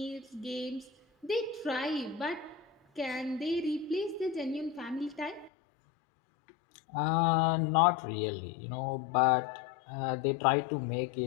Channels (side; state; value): right; drops out; at 5.5 s